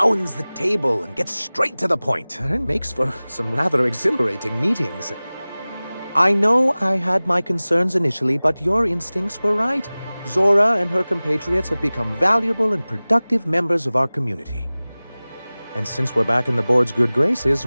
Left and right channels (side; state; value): both; inverted; correlation -0.99